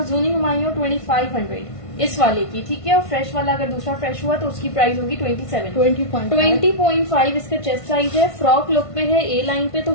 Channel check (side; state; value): right; late; 1.5 ms